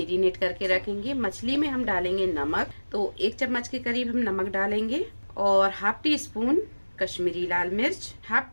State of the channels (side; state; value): both; inverted; correlation -1.00